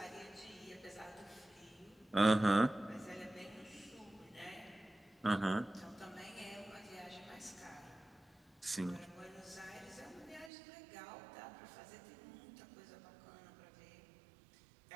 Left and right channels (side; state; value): left; drops out; at 10.5 s